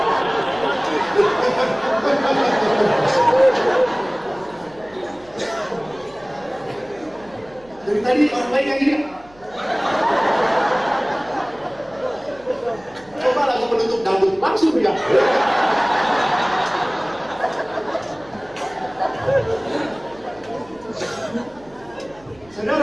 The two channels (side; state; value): right; noise; hum, 26 dB below the sound